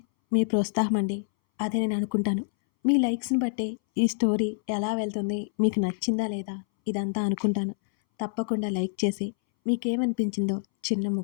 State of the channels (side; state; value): right; silent; 60 dB below the other